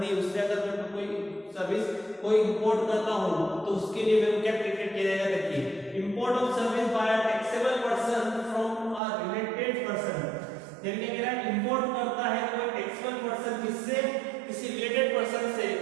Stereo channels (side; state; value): left; drops out; at 9.0 s